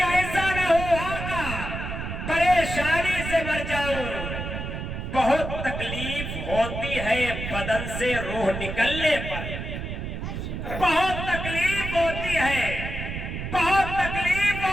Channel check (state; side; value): noise; right; rumble, 5 dB below the sound